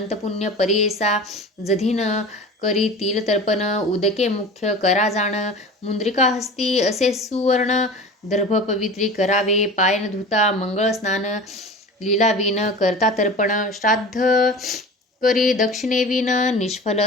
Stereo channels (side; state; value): both; normal; correlation 0.36